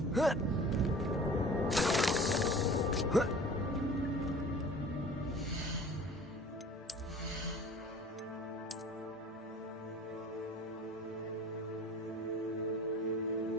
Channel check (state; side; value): normal; both; correlation 0.44